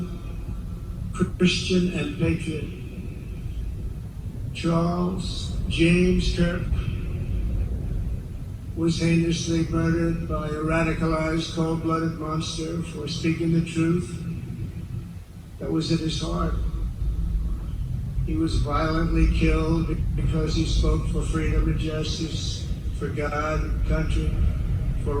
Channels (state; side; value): identical; both; correlation 1.00